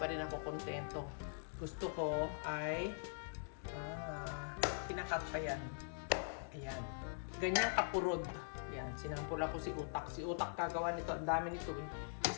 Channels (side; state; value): right; silent; digital silence